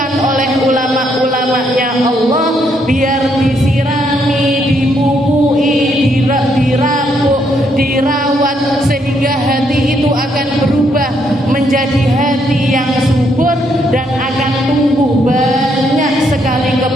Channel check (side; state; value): both; normal; correlation 0.73